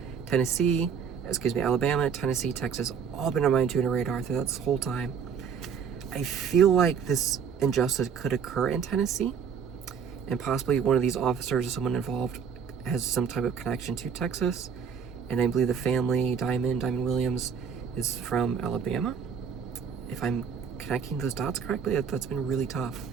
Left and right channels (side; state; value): left; quieter; 6.7 dB